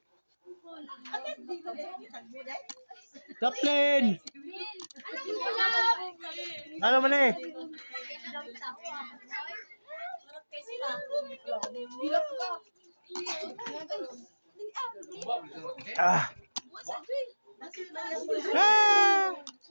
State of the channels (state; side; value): inverted; both; correlation -1.00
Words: Chaplin! Ano man eh? Ah! Ah!